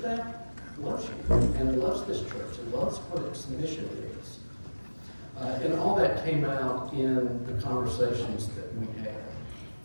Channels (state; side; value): inverted; both; correlation -1.00